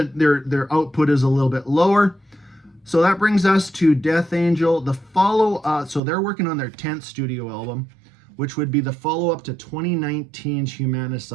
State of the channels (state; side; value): drops out; left; at 6.0 s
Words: their output is a little bit lower. So that brings us to Death Angel. The so they're working on their 10th studio album, which would be the follow-up to 2019's